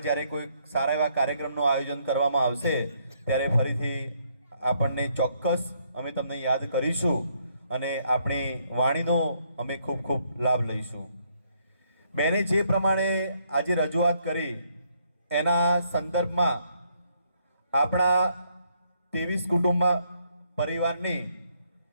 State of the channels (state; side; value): inverted; both; correlation -0.71